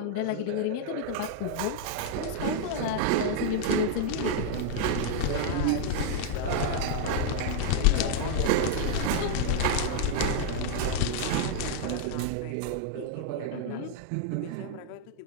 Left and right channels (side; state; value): both; different; correlation -0.01